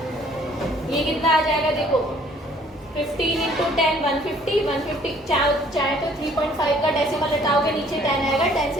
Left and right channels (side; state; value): both; normal; correlation 0.59